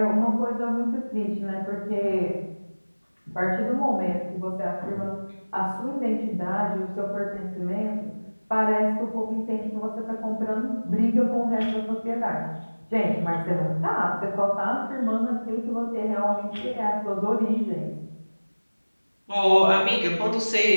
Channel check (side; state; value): both; inverted; correlation -1.00